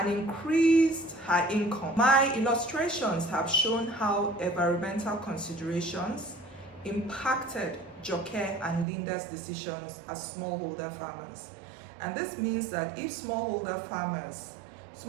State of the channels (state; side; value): drops out; left; at 8.8 s